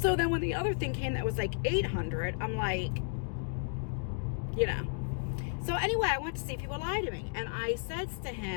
then when the other thing came that was like $800, I'm like, you know. So anyway, I went to see if he would lie to me. And I said to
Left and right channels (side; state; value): right; silent; digital silence